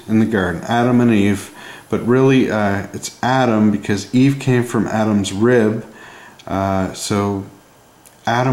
in the garden, Adam and Eve, but really it's Adam because Eve came from Adam's rib, so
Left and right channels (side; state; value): both; identical; correlation 1.00